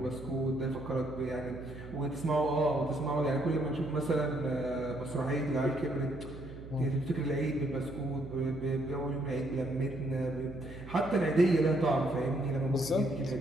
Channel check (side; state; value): right; noise; hum, 13 dB below the sound